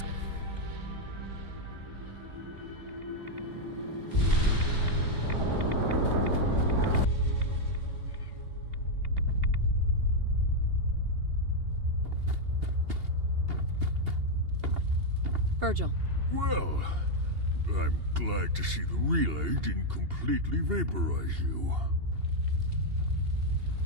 Virgil. Well, I'm glad to see the relay didn't completely vaporize you.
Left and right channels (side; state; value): left; late; 2.8 ms